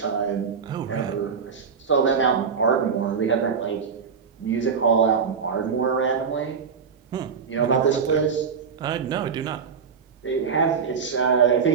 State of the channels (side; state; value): left; quieter; 6.1 dB